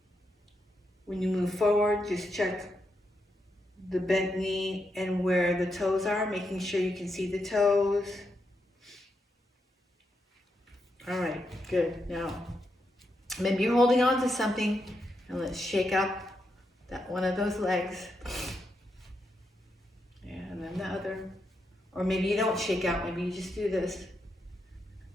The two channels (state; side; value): normal; both; correlation 0.83